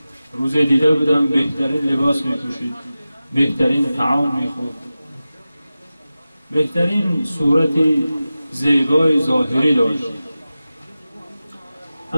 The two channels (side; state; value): both; inverted; correlation -0.95